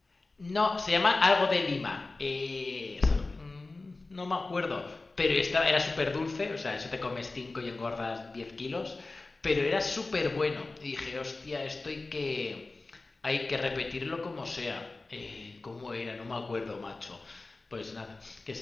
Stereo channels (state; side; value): quieter; right; 3.4 dB